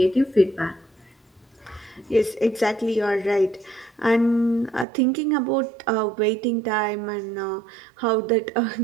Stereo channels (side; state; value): left; drops out; at 4.9 s